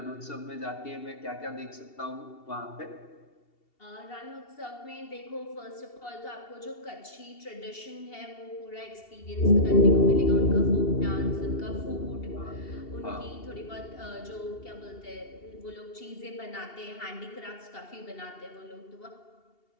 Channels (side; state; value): right; late; 2.7 ms